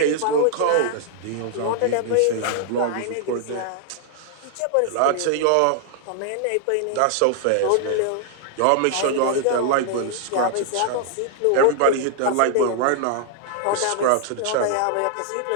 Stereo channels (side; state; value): both; different; correlation 0.00